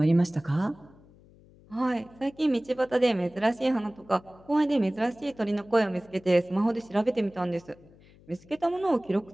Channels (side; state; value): left; noise; hum, 26 dB below the sound